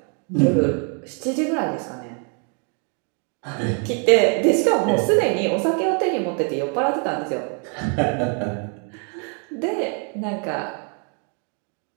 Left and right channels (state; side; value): quieter; left; 39.9 dB